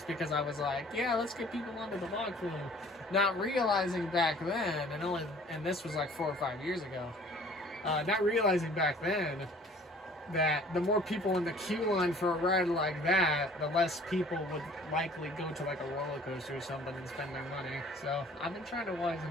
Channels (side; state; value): both; normal; correlation 0.52